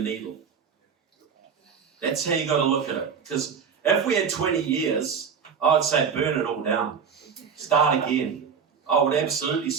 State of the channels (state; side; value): quieter; left; 6.5 dB